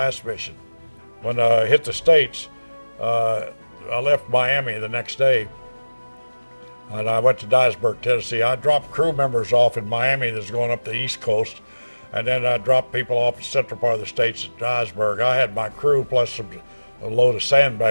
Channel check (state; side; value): inverted; both; correlation -1.00